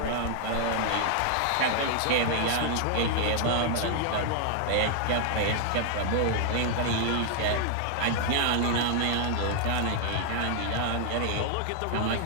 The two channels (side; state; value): both; different; correlation 0.00